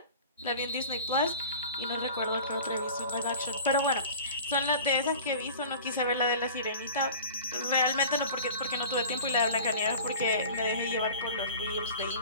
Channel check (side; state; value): both; inverted; correlation -0.40